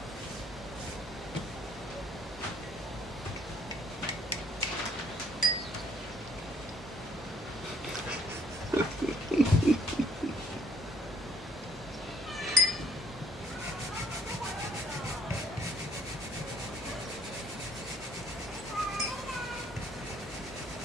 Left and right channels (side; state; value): both; normal; correlation 0.64